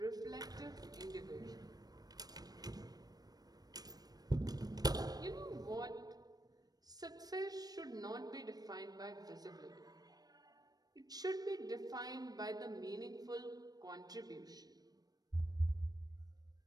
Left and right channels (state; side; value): late; left; 0.19 ms